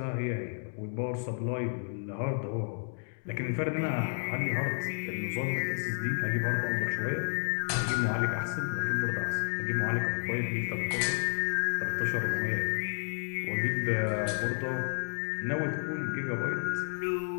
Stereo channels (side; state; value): right; silent; 57 dB below the other